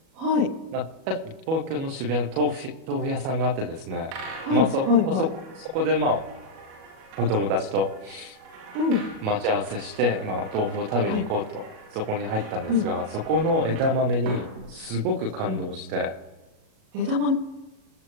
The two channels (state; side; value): late; left; 37 ms